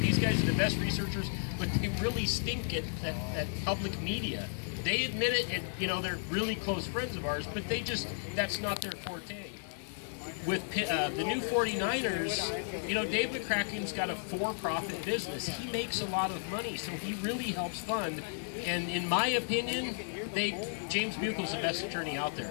These guys are the best researchers, but they really stink at public media. They admit it, and you know, they're really close friends of ours, but that's not their forte. With the new 49ers, you know, Dave McCracken's got a for-profit business. He makes a lot of money, so he really helps fund. And in my opinion, James Buchel's the best attorney out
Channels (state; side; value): silent; right; digital silence